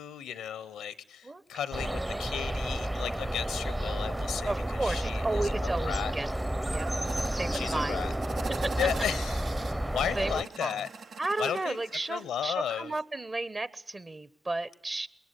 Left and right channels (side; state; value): both; normal; correlation 0.88